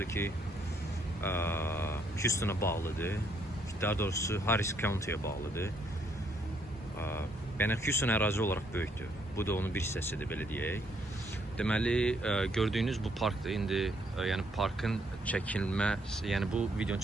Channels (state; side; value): normal; both; correlation 0.71